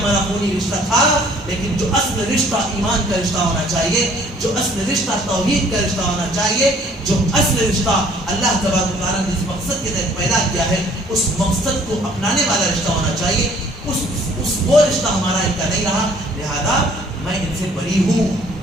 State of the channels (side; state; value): both; normal; correlation 0.57